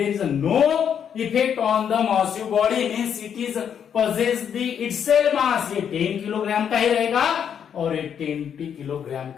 is no effect on the massive body, means it is possess the itself mass। ये 10 किलोग्राम का ही रहेगा और ये 20 किलोग्राम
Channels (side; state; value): right; quieter; 8.2 dB